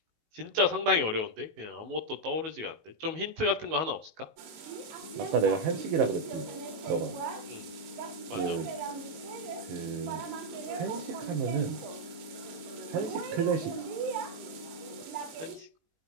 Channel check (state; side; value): late; left; 19 ms